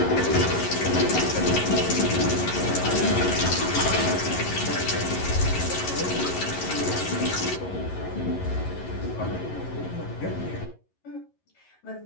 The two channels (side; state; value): right; late; 11 ms